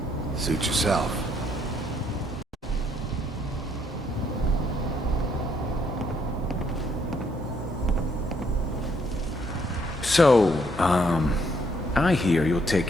Suit yourself. So, I hear you'll take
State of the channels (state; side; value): normal; both; correlation 0.70